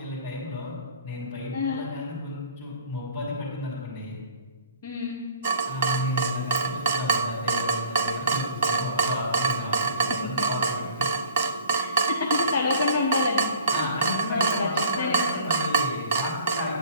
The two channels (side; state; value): both; inverted; correlation -0.49